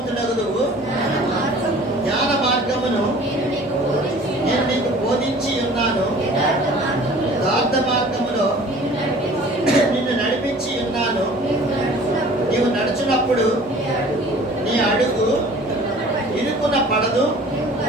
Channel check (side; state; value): both; normal; correlation 0.47